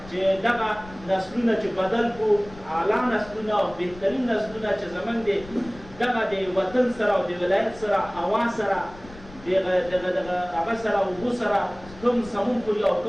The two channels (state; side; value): noise; left; rumble, 19 dB below the sound